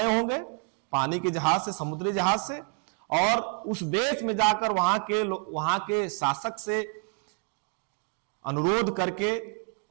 होंगे, पानी के जहाज से, समुद्री जहाज से, और उस देश में जाकर वहां के शासक से अनुरोध करके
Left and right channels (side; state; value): left; quieter; 39.6 dB